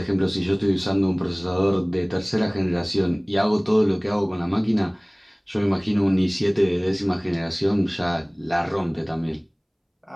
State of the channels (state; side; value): identical; both; correlation 1.00